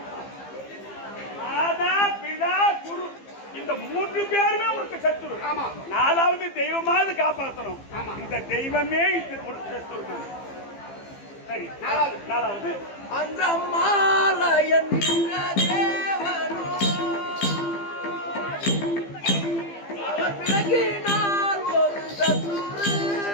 மாதா பிதா குரு இந்த மூன்று பேருமே உனக்கு சத்துரு. நாலாவது தெய்வமாவது காப்பாற்றணும். இந்த தெய்வமே இந்த சத்துரு தான். சரி நாலாவது அந்த அம்மாலயன் தேவனோ அவர் விலகினால் ஒரு சத்துரு.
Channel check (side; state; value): right; late; 15 ms